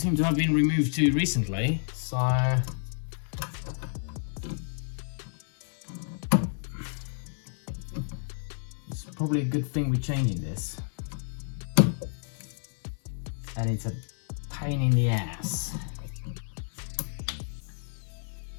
to have been removed too recently, so it's probably a good thing we're changing this. And it's a pain in the ass.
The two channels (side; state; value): right; silent; digital silence